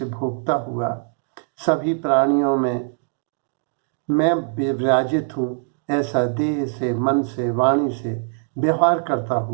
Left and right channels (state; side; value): silent; left; 64 dB below the other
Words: भोगता हुआ, सभी प्राणियों में मैं विराजित हूँ ऐसा देह से, मन से, वाणी से व्यवहार करता